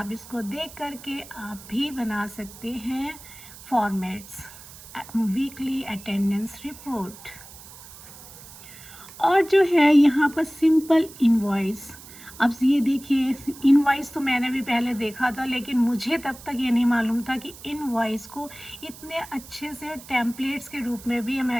इसको देख करके आप भी बना सकते हैं फॉर्मेट्स वीकली अटेंडेंस रिपोर्ट। और जो है यहाँ पर सिंपल इनवॉइस। अब ये देखिए इनवॉइस तो मैंने भी पहले देखा था, लेकिन मुझे तब तक ये नहीं मालूम था कि इनवॉइस को इतने अच्छे से टेम्पलेट्स के रूप में भी हम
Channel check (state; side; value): noise; right; hiss, 18 dB below the sound